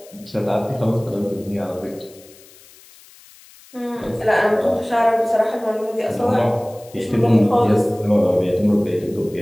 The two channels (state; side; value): noise; left; hiss, 24 dB below the sound